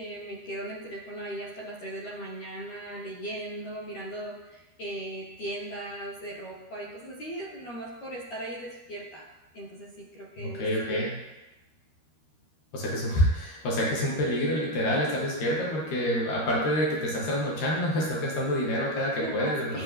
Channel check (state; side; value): late; right; 13 ms